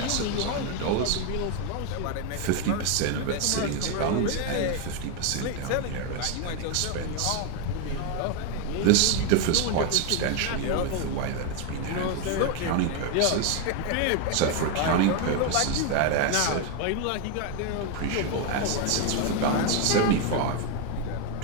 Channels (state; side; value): different; both; correlation 0.01